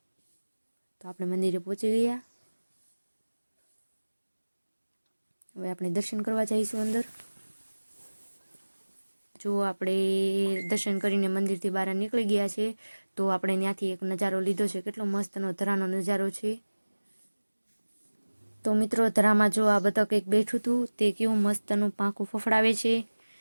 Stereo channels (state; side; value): inverted; both; correlation -1.00